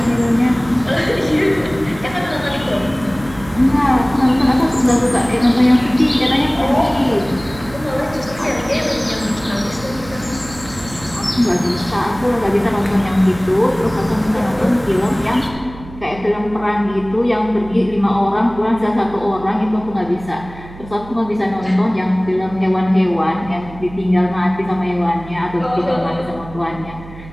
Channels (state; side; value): noise; right; hum, 16 dB below the sound